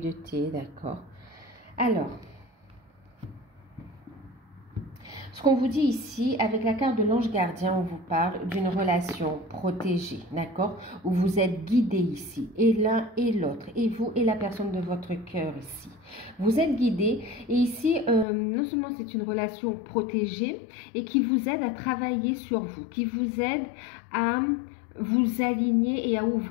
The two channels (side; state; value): right; drops out; at 18.2 s